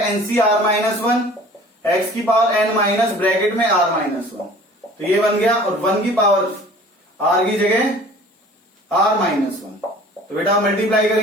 nC are minus one x की पावर एन माइनस ब्रैकेट में आर माइनस वन, तो ये बन गया, और वन की पावर आर की जगह आर माइनस वन, तो बेटा मल्टीप्लाई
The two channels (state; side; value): normal; both; correlation 0.47